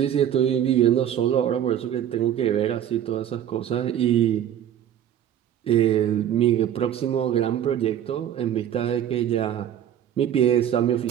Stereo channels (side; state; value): left; quieter; 10.3 dB